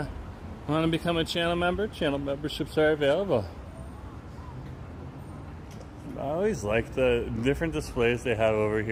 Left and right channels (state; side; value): identical; both; correlation 1.00